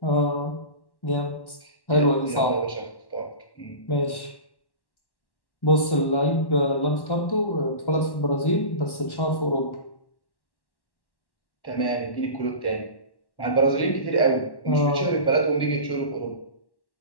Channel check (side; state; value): right; late; 1.1 ms